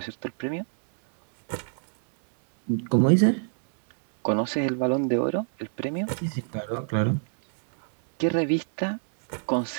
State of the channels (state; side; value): silent; left; digital silence